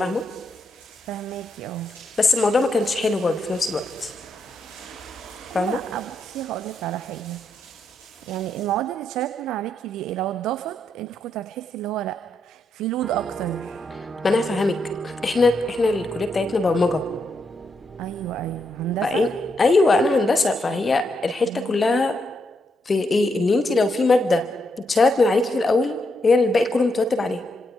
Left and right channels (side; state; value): both; normal; correlation 0.80